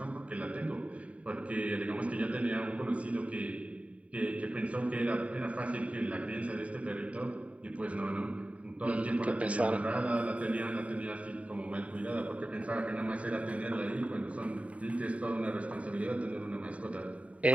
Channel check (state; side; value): late; left; 0.066 ms